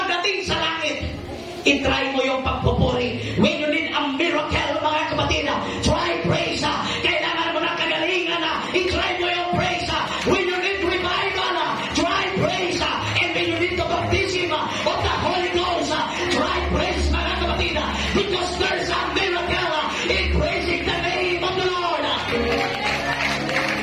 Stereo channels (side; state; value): both; identical; correlation 1.00